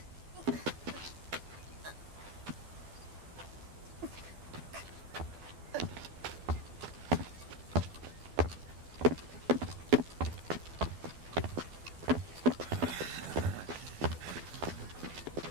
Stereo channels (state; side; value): late; left; 12 ms